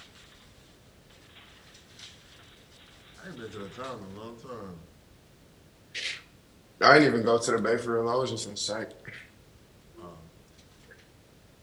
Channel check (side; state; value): both; identical; correlation 1.00